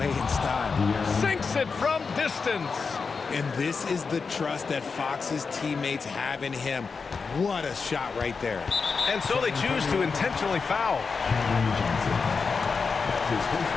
in style. Sinks it from distance. And this is the trust that Fox's teammates have in him. What a shot right there. And so they choose to intentionally foul.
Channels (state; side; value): quieter; right; 5.0 dB